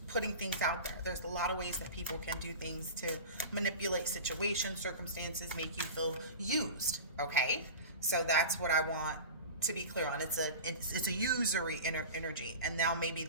putting things out there. There's a lot of ways that people can do things to manipulate situations, circumstances, make you feel used, okay? So that's what I want to be clear on. It's a usury energy, and now maybe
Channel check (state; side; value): inverted; both; correlation -0.31